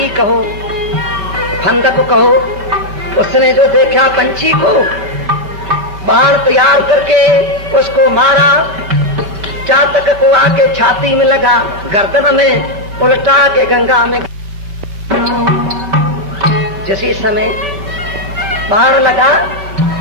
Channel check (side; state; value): left; late; 5.2 ms